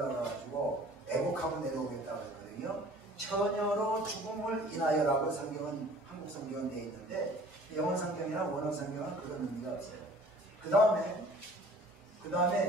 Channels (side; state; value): both; normal; correlation 0.49